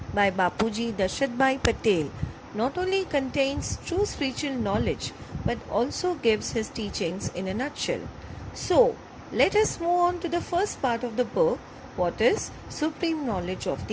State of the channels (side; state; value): both; identical; correlation 1.00